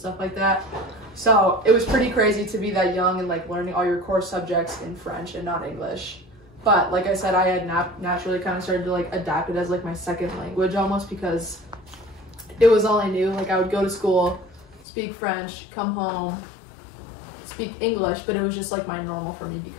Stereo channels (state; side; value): drops out; right; at 14.9 s